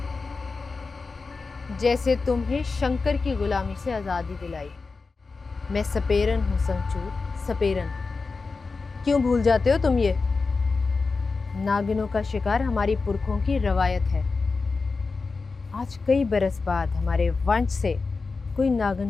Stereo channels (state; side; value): quieter; right; 4.2 dB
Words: जैसे तुम्हें शंकर की गुलामी से आज़ादी दिलाई। मैं सपेरन हूँ संचूर, सपेरन। क्यों भूल जाते हो तुम ये? नागिनों का शिकार हमारी पुरखों की रवायत है। आज कई बरस बाद हमारे वंश से कोई